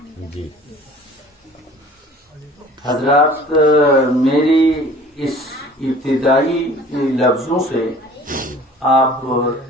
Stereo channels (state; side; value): normal; both; correlation 0.47